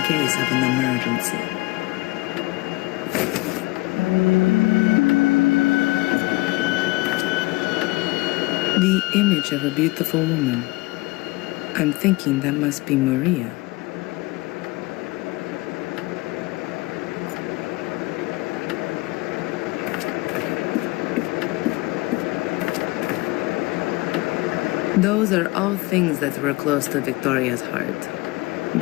case of an emergency. The image of a beautiful woman. I'm thinking that must be Maria. Those are all things that were close to Victoria's heart.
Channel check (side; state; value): right; quieter; 22.3 dB